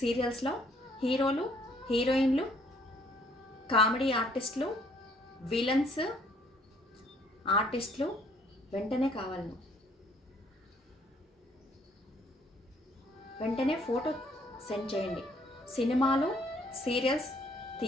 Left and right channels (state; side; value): normal; both; correlation 0.63